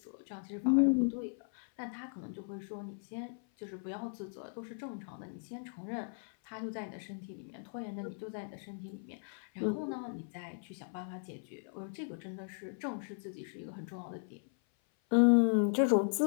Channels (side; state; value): right; silent; 53 dB below the other